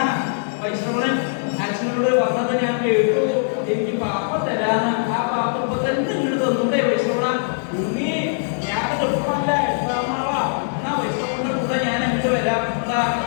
വൈഷ്ണവൻ അച്ഛനോട് പറഞ്ഞത് ഞാൻ കേട്ടു. എനിക്ക് പാപ്പം തരാന്ന്. ആ പാപ്പം ഇപ്പൊ തന്നെ ഇങ്ങോട്ട് തന്നൂടെ വൈഷ്ണവ? ഉണ്ണി ഞാനത് ഇപ്പല്ല 8-ാം നാളാ. എന്നാ വൈഷ്ണവന്റെ കൂടെ ഞാൻ അങ്ങോട്ട് വരാം.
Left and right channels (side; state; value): right; silent; digital silence